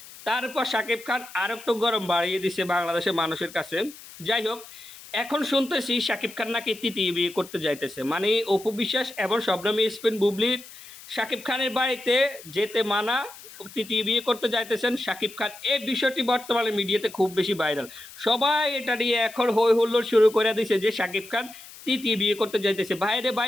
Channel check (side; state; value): left; noise; hiss, 18 dB below the sound